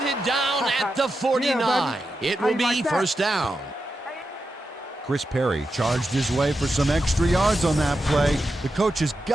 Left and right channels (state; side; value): normal; both; correlation 0.88